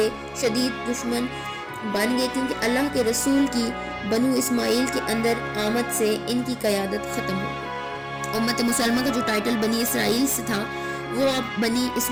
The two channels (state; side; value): identical; both; correlation 1.00